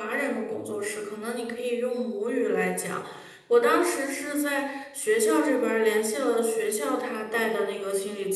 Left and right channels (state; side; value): identical; both; correlation 1.00